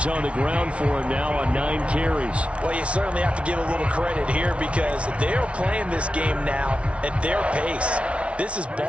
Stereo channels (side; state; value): left; late; 0.061 ms